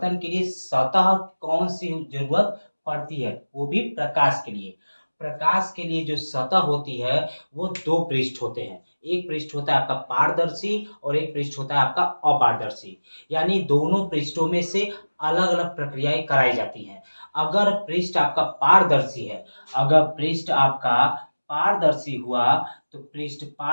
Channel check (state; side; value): inverted; both; correlation -1.00